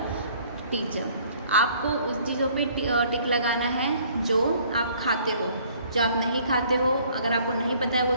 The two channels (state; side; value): inverted; both; correlation -0.58